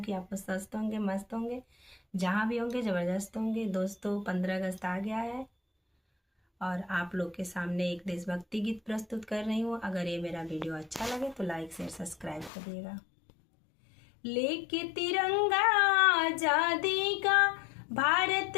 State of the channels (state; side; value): drops out; right; at 12.5 s